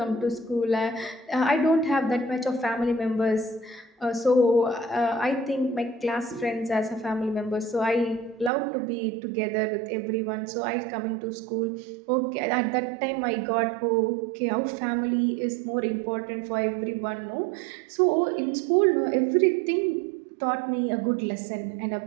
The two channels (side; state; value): left; drops out; at 8.5 s